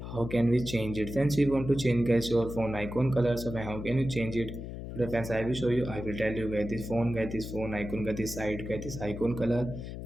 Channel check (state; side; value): noise; left; hum, 8 dB below the sound